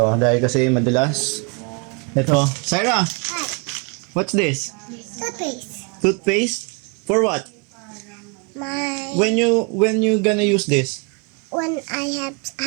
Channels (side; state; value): left; quieter; 32.9 dB